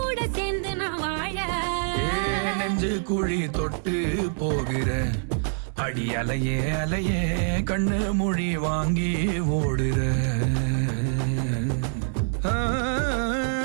சேர்ந்து நான் வாழ. நெஞ்சு குழி தொட்டு போகிற அடி அலையே அலையே கண்ணு மொழி வாங்கி ஓடுற. ஆ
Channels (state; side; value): silent; left; 58 dB below the other